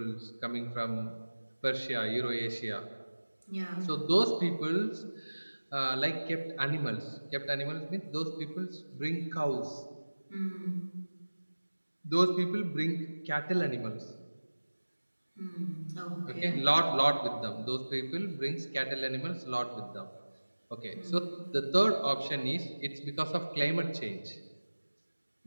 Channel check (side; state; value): both; inverted; correlation -1.00